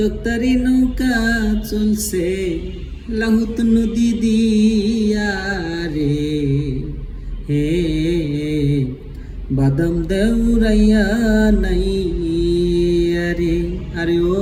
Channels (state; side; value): identical; both; correlation 1.00